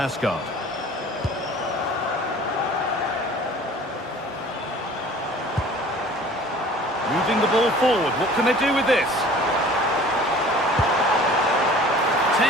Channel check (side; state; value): both; normal; correlation 0.47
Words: Moving the ball forward. What can they do with this?